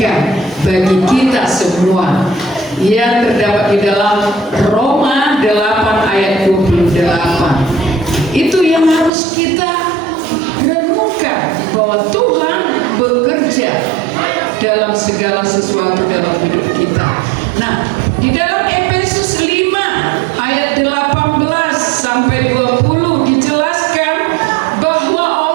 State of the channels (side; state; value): left; drops out; at 9.1 s